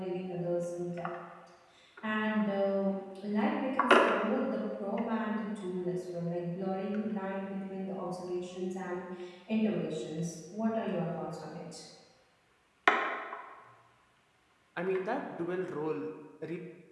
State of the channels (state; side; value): identical; both; correlation 1.00